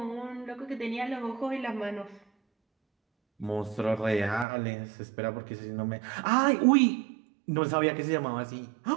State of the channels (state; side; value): drops out; left; at 4.5 s